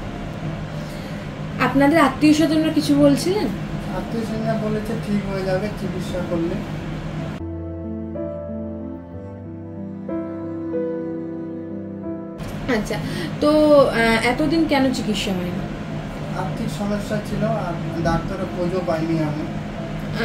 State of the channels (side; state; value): both; identical; correlation 1.00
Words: আপনাদের আত্মীয় স্বজনরা কিছু বলছিলেন? আত্মীয় স্বজনরা বলেছে ঠিক হয়ে যাবে চিকিৎসা করলে। আচ্ছা, তো এতদিন কেন চিকিৎসা হয়নি? আর্থিক সমস্যা ছিল আর ডাক্তারের খোঁজও পাইনি আমি।